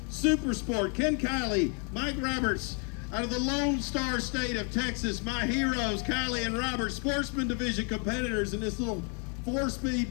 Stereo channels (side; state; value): right; quieter; 38.7 dB